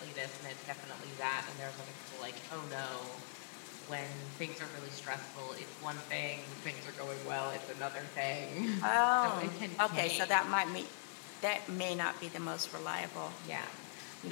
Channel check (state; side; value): silent; right; 50 dB below the other